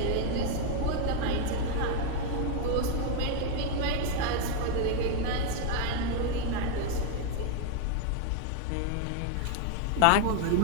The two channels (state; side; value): different; both; correlation 0.01